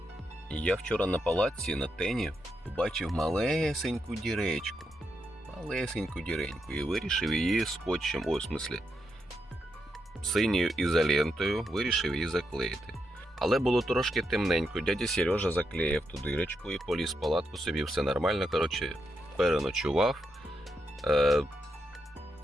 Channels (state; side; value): normal; both; correlation 0.83